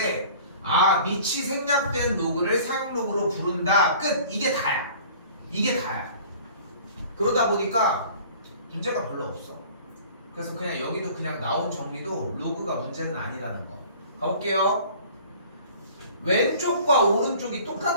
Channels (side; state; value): both; inverted; correlation -0.47